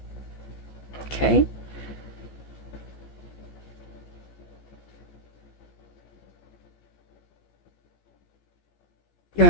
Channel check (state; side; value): late; right; 14 ms